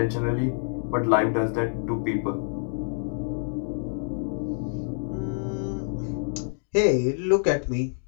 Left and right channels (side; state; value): right; silent; digital silence